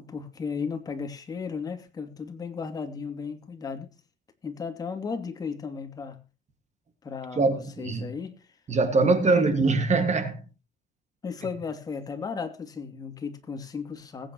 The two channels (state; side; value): normal; both; correlation 0.57